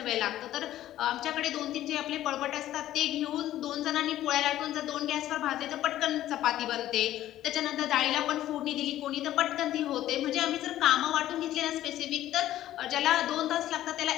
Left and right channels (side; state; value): right; quieter; 13.4 dB